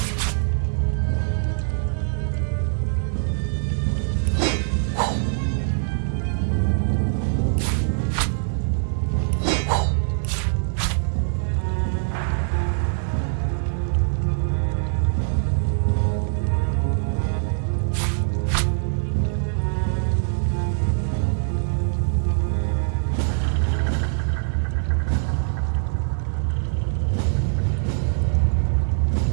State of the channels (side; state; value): left; silent; digital silence